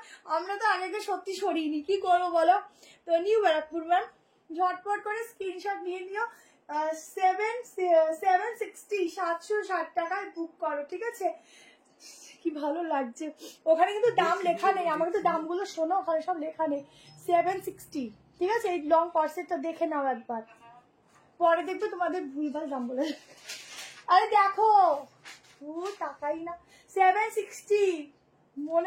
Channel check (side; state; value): both; identical; correlation 1.00